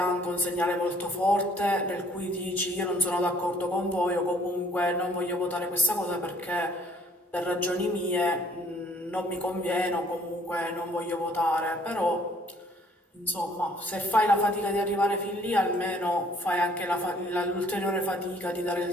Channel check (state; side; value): normal; both; correlation 0.60